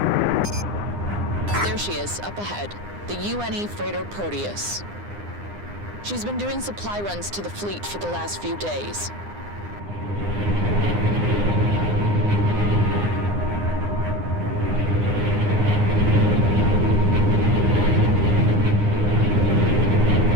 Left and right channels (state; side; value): late; left; 9.8 ms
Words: There she is, up ahead. The UNE freighter Proteus. She's been doing supply runs to the fleet for the last few days.